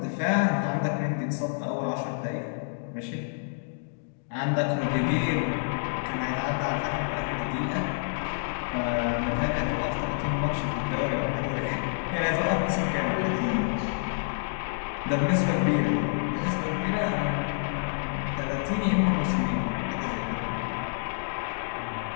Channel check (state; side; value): silent; right; digital silence